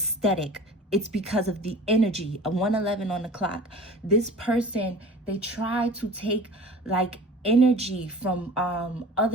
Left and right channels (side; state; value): both; normal; correlation 0.41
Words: it's because of the energy. A 111 on the clock. This person, they try to take like energy from